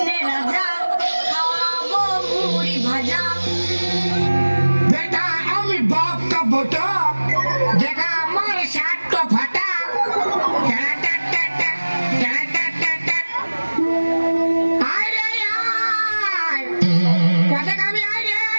রাজা, খাওয়াবো মুড়ি ভাজা। बेटा আমি বাপ का बेटा देखा हमारे साथ तो फटा अरे यार कैसे कभी आए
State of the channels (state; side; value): inverted; both; correlation -1.00